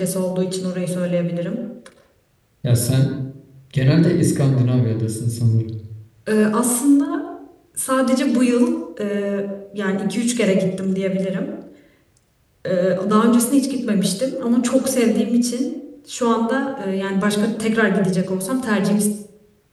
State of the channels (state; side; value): identical; both; correlation 1.00